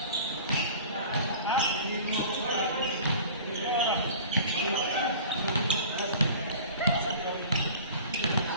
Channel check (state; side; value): inverted; both; correlation -0.42